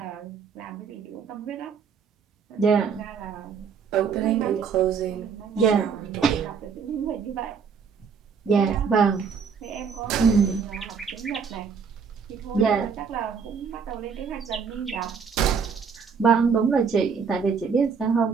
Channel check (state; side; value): quieter; left; 6.1 dB